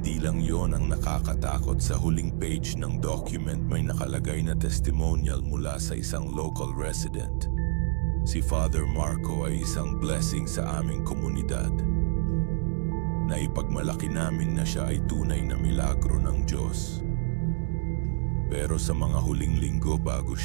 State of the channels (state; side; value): silent; left; 60 dB below the other